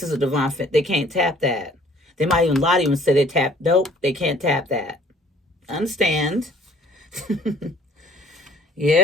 is a divine fit. They can't tap that. They might even lie to you and say they tap. Nope, they can't tap that. Understand?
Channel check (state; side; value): normal; both; correlation 0.55